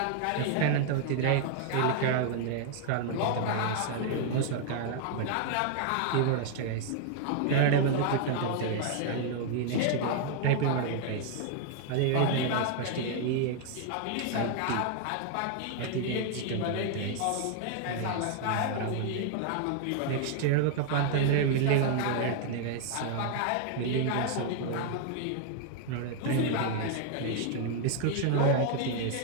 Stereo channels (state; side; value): different; both; correlation 0.00